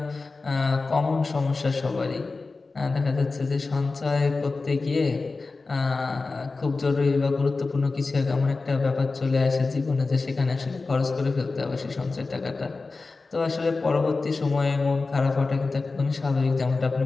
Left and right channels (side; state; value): right; quieter; 3.8 dB